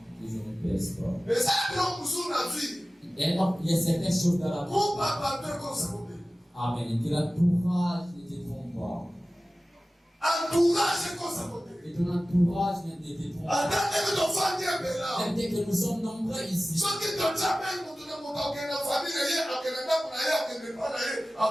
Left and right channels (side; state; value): both; normal; correlation 0.96